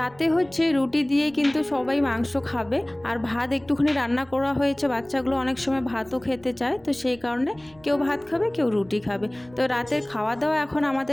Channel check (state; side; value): noise; right; rumble, 27 dB below the sound